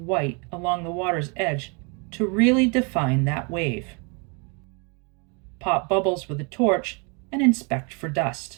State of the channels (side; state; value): left; quieter; 34.1 dB